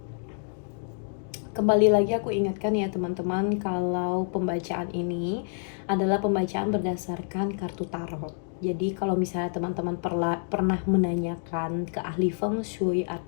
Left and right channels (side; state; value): right; silent; digital silence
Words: Kembali lagi aku ingatkan ya teman-teman, kalau pembacaan ini adalah pembacaan berdasarkan kartu tarot. Jadi kalau misalnya teman-teman pernah menanyakan ke ahli feng shui